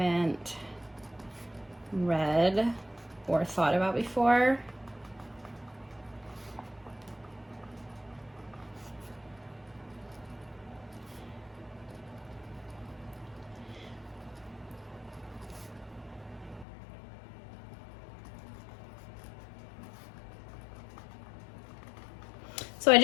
read or thought about before. So I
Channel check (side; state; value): right; drops out; at 16.7 s